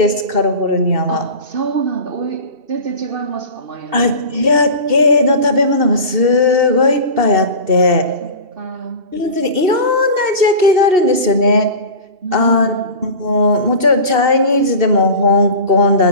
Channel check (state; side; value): late; left; 2.7 ms